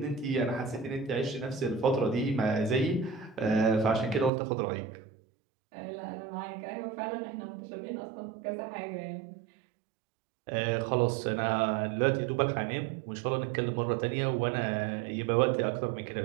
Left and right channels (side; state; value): left; drops out; at 4.3 s